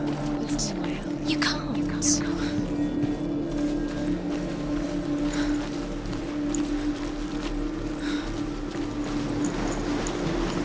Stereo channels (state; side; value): noise; right; rumble, 25 dB below the sound